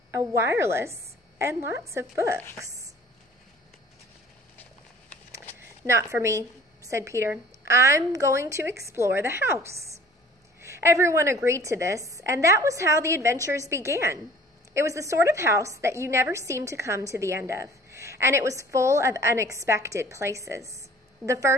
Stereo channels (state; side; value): normal; both; correlation 0.49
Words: a wireless and lots of books. Not for me, said Peter. I'm going to explore the house. Everyone agreed to this, and that was how the adventures began. It was the sort of house that you never seemed to come to the end of. and it was full of unexpected places. The